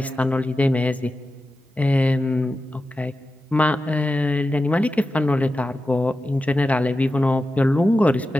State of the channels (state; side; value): normal; both; correlation 0.92